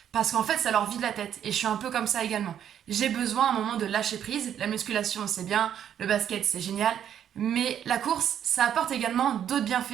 Parce qu'en fait, ça leur vide la tête. Et je suis un peu comme ça également. J'ai besoin à un moment de lâcher prise. La musculation, c'est bien. Le basket, c'est génial. Mais la course, ça apporte également d'autres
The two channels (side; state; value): left; quieter; 9.6 dB